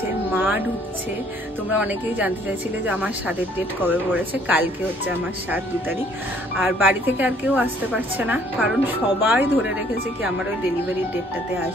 মা ঢুকছে। তোমরা অনেকেই জানতে চাইছিলে যে আমার সাদের ডেট কবে পড়েছে। কালকে হচ্ছে আমার 2 তারিখ। আর বাড়ি থেকে আর কেউ আসতে পারছে না, কারণ সবাই ধরে রেখেছে কি আমার ওই ডেলিভারির ডেটটাতে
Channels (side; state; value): both; normal; correlation 0.61